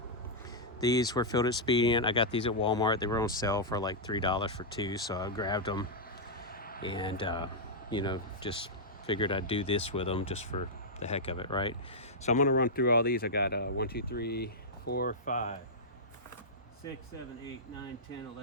These were filled at Expending. I got these at Walmart. They were on sale for like $3 for 2, so I grabbed them, and you know, just figured I'd do this with them just for the heck of it, right? So I'm going to run through all these. I got 1, 2, 3, 4, 5, 6, 7, 8, 9, 10,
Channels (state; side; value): normal; both; correlation -0.08